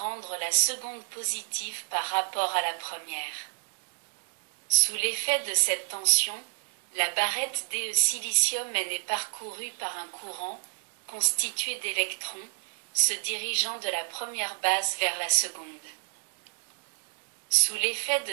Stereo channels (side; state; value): left; silent; 57 dB below the other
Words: la seconde positive par rapport à la première. Sous l'effet de cette tension, la barrette DE silicium N est parcourue par un courant, constitué d'électrons, se dirigeant de la première base vers la seconde. Sous l'effet